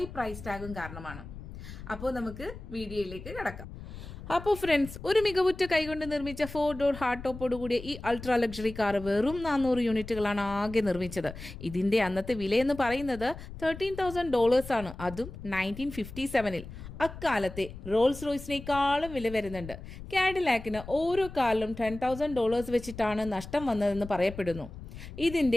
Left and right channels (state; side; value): noise; left; rumble, 13 dB below the sound